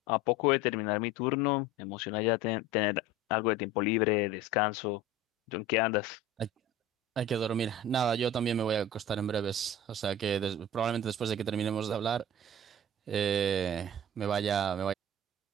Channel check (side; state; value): both; normal; correlation 0.37